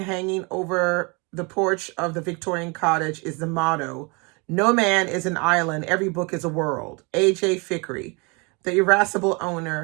over the porch of the Victorian cottage is the motto, "No man is an island, every book is a world." A.J. Fikry, the irascible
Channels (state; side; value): quieter; left; 30.1 dB